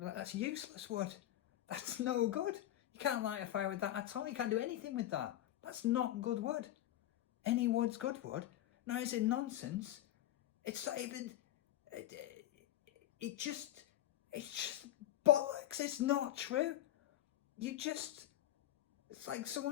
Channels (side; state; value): right; quieter; 13.3 dB